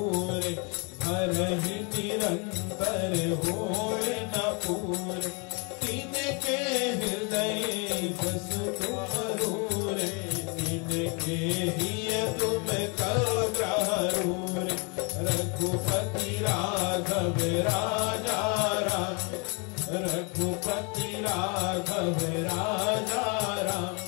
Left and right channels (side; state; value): right; quieter; 33.4 dB